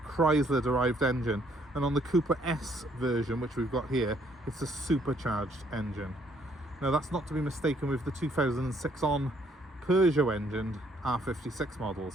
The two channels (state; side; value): normal; both; correlation 0.66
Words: derived engine, and on the Cooper S version, which we've got here, it's a supercharged engine. Now that's not to be mistaken with the 2006 on Peugeot engined R56